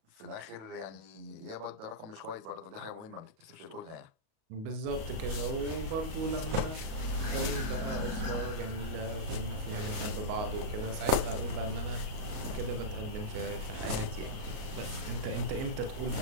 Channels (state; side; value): late; left; 37 ms